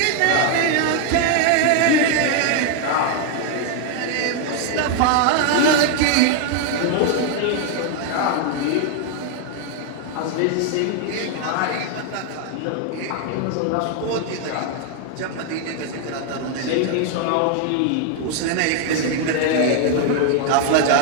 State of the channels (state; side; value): different; both; correlation 0.00